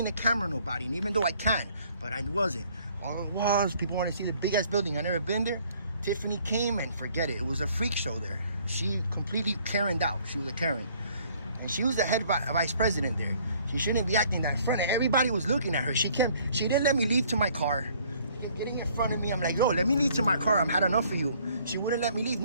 the camera at nobody. And even though I can, but I wasn't. All it was, people want to see the big ass building. I never been there. Tiffany came and forget it. It was a freak show there. She completely Karen'd out. She was a Karen. And she was the head vice president there. She shouldn't be acting that in front of everybody was looking at her. She didn't let me leave to my car. She kept getting in front of me. I'm like, yo, let me leave to my car. I've had enough of you. She wouldn't let me leave.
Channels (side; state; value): both; inverted; correlation -0.60